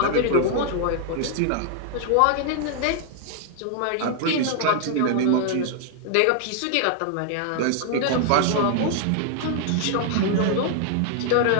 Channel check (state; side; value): different; both; correlation 0.00